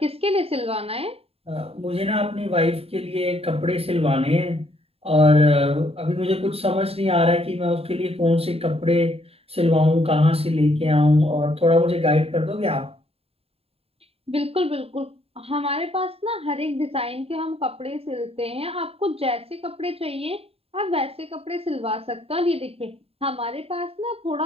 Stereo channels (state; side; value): late; left; 0.28 ms